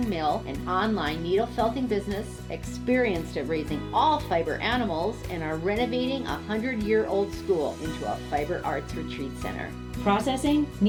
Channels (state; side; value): identical; both; correlation 1.00